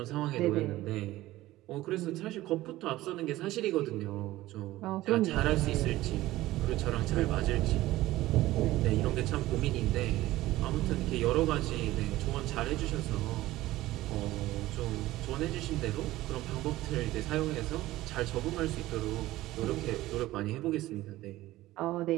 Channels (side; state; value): left; quieter; 16.6 dB